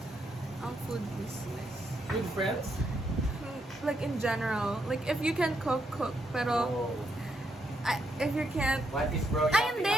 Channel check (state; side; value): normal; both; correlation 0.78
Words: ang food business. With friends? Like in general, like if you can cook. Pero if you can't, What is bro ay